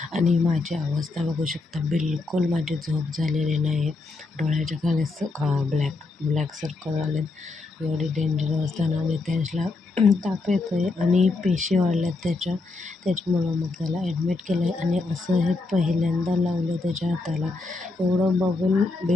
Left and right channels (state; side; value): quieter; right; 3.6 dB